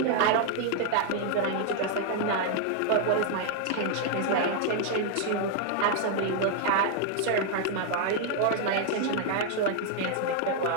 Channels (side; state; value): both; different; correlation 0.00